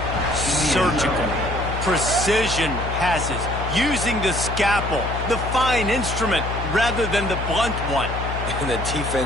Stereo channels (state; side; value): noise; left; hum, 5 dB below the sound